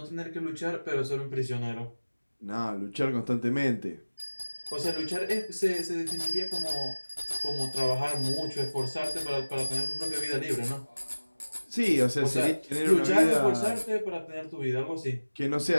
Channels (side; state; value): both; inverted; correlation -1.00